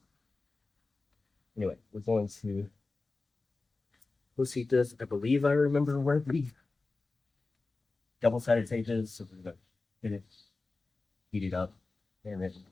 anyway, we're going to heat this. I believe I remember where the double-sided tape is, so we're gonna hit it, heat it up, and then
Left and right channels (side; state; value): right; quieter; 3.6 dB